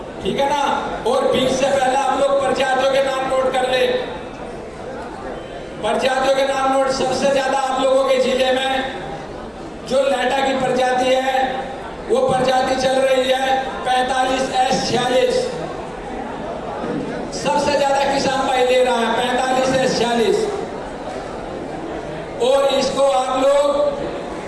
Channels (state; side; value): identical; both; correlation 1.00